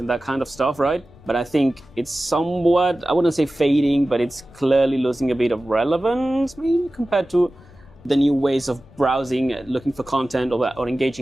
that kind of stuff, right? But I think it's somewhat, I wouldn't say fading, but it's clearly losing a bit of relevance, maybe, compared to the new ways of browsing, looking for content, or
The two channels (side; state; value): left; noise; rumble, 24 dB below the sound